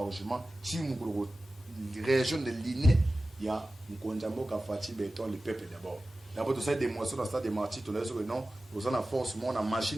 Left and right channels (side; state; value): both; normal; correlation 0.95